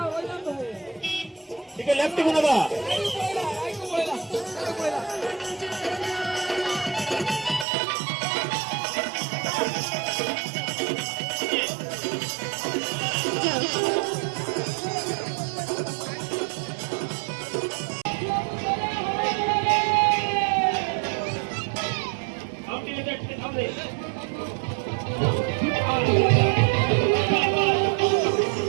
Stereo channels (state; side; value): drops out; left; at 7.7 s